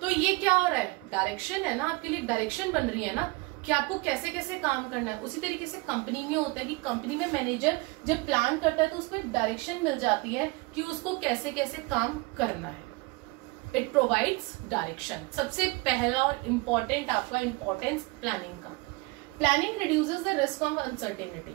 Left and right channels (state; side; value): quieter; left; 24.6 dB